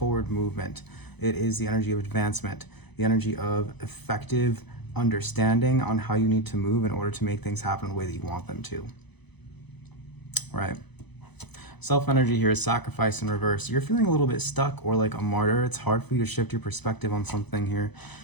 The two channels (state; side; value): late; right; 0.99 ms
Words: movement. It is the energy of advancement, the energy of effective understanding on how you need to move in order to make things happen the way that you want them to, right? Self-energy here is sacrifice in reverse. You're feeling a little bit stuck or like a martyr. It's hard for you to shift your perspective on something here.